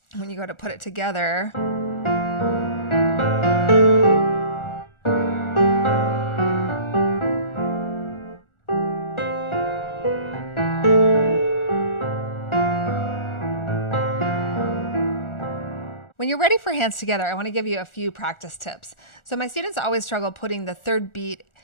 When you go to put it together, when you're ready for hands together, I want to give you a few practice tips. So my students always struggle putting the third beat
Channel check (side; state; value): right; late; 1.4 ms